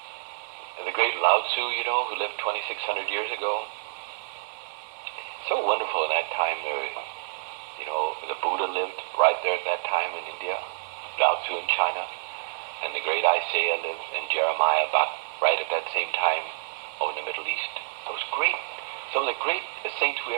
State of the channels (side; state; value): left; silent; digital silence